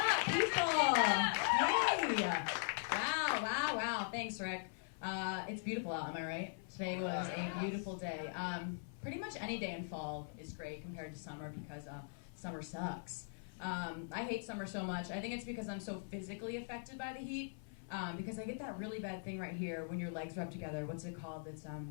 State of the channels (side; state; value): right; silent; 50 dB below the other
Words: people? Hey! Wow. Thanks, Rick. It's beautiful out, am I right? Today was a beautiful day. Pretty much any day in fall is great compared to summer because summer sucks. I hate summer so much. I think it's because I'm so physically affected by the heat. Because I get that really bad thing right here when your legs rub together. What's it called? It's,